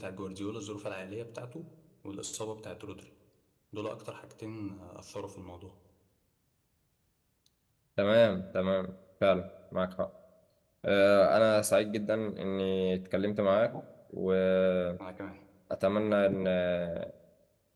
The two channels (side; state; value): both; identical; correlation 1.00